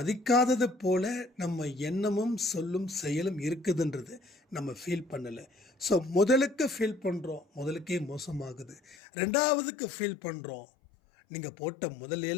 போல நம்ம எண்ணமும் சொல்லும் செயலும் இருக்குதுன்றது நம்ம ஃபீல் பண்ணலை. ஸோ முதலுக்கு ஃபீல் பண்ணுறோம், முதலுக்கே மோசமாகுது. ரெண்டாவதுக்கு ஃபீல் பண்ணுறோம், நீங்கள் போட்ட முதல்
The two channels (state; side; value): drops out; right; at 9.0 s